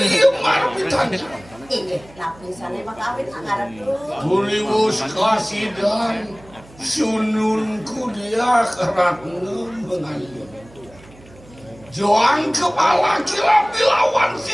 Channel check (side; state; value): right; noise; hum, 24 dB below the sound